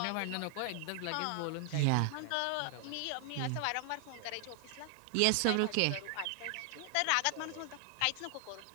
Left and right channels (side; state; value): both; different; correlation 0.00